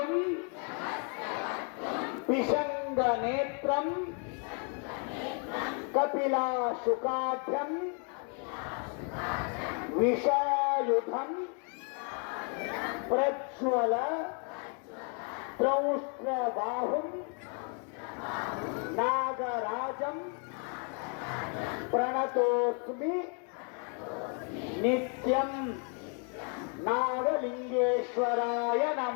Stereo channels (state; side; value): quieter; right; 39.9 dB